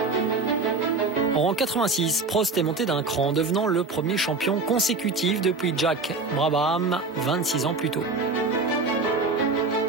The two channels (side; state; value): left; quieter; 3.8 dB